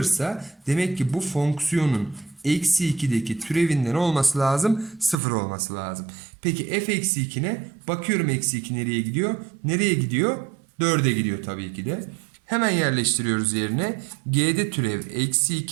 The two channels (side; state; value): left; drops out; at 5.2 s